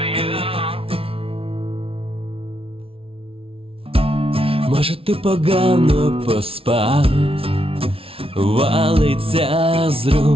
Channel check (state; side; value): late; left; 0.26 ms